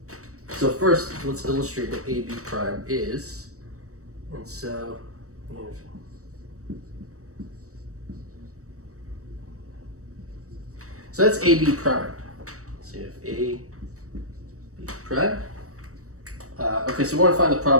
so first let's illustrate what AB prime is. And so, so that's AB prime. So you have AB prime. Okay, so we want to find the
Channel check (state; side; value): late; left; 0.65 ms